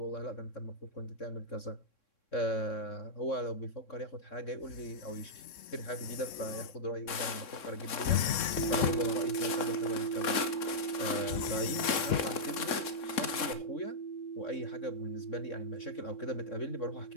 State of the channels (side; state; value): right; late; 3.6 ms